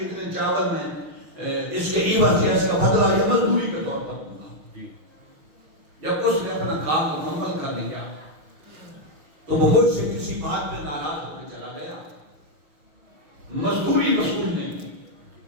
چاول میں اس کے عوض یا اس کا بدلہ یا مزدوری کے طور پر دوں گا۔ جب اس نے اپنا کام مکمل کر لیا تو وہ مجھ سے کسی بات میں ناراض ہو کے چلا گیا، مزدوری وصول نہیں کی۔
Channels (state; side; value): late; left; 6.0 ms